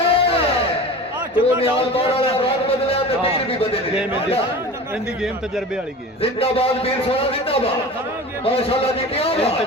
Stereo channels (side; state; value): both; normal; correlation 0.35